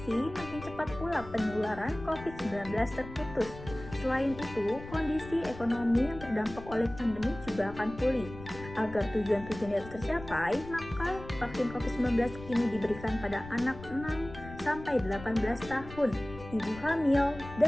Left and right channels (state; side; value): noise; left; rumble, 14 dB below the sound